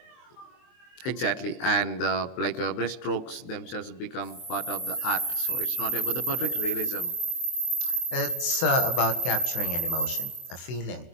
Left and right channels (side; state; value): right; late; 23 ms